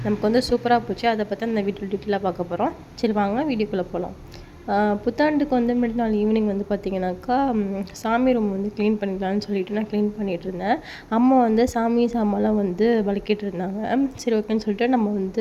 நமக்கு வந்து சூப்பராக போச்சு. அதை பற்றி அந்த வீடியோ டீட்டெயிலாக பார்க்க போகிறோம். சரி வாங்க வீடியோக்குள்ளே போகலாம். புத்தாண்டுக்கு வந்து முன்னாடி நாள் ஈவினிங் வந்து பார்த்திங்கனாக்கா, சாமி ரூம் வந்து க்ளீன் பண்ணிக்கலான்னு சொல்லிட்டு நான் க்ளீன் பண்ணிகிட்டு இருந்தேன். அம்மா வந்து சாமி சாமான்லாம் வந்து வலிக்கிட்டு இருந்தாங்க. சரி ஓகேன்னு சொல்லிட்டு நம்ம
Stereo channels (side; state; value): both; identical; correlation 1.00